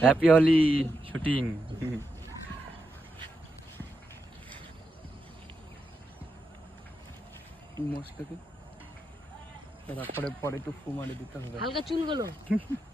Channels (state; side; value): normal; both; correlation 0.86